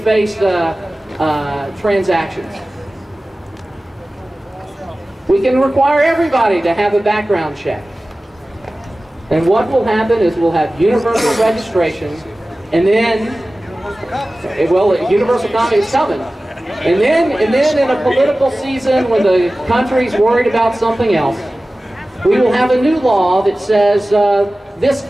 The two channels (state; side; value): normal; both; correlation 0.97